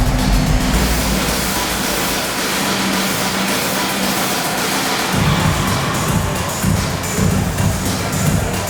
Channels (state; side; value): identical; both; correlation 1.00